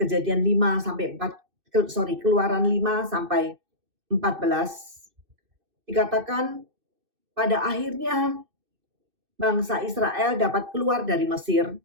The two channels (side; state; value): left; late; 2.6 ms